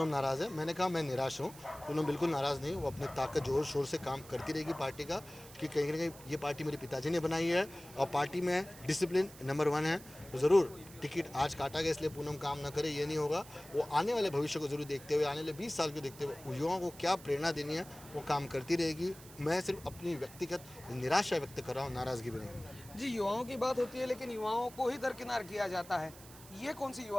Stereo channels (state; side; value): noise; right; hiss, 19 dB below the sound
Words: नाराज़ है, मैंने कहा मैं निराश हूँ। पूनम बिल्कुल नाराज़ नहीं, वो अपनी ताकत जोर शोर से काम करती रहेगी पार्टी का, कि कहीं ना कहीं ये पार्टी मेरे पिताजी ने बनाई है और पार्टी में डिसिप्लिन नंबर 1 है। तो ज़रूर टिकट आज काटा गया इसलिए पूनम काम ना करे, ये नहीं होगा। वो आने वाले भविष्य को जरूर देखते हुए, आने वाले 20 साल को देखते हुए युवाओं को क्या प्रेरणा देनी है वो काम करती रहेगी। मैं सिर्फ अपनी व्यक्तिगत निराशा व्यक्त कर रहा हूँ, नाराज़गी भी नहीं। जी युवाओं की बात होती है, लेकिन युवाओं को ही दरकिनार किया जाता है। ये कौन सी